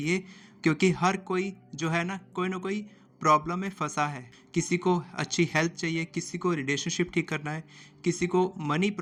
क्योंकि हर कोई जो है ना कोई प्रॉब्लम में फंसा है। किसी को अच्छी हेल्थ चाहिए, किसी को रिलेशनशिप ठीक करना है, किसी को money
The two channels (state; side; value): identical; both; correlation 1.00